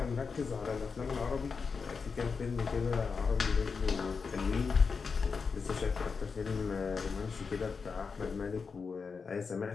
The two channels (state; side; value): quieter; right; 5.2 dB